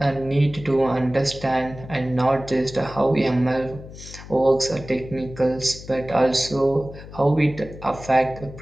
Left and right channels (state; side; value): noise; left; hum, 15 dB below the sound